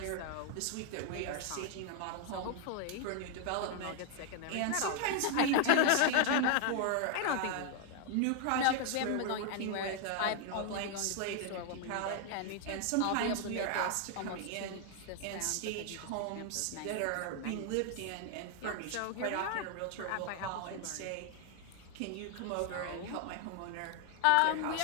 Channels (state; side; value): different; both; correlation 0.00